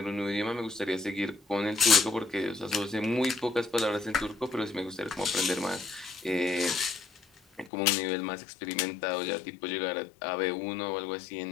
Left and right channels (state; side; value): drops out; right; at 7.7 s